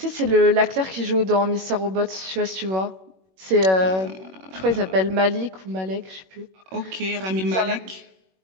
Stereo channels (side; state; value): left; late; 21 ms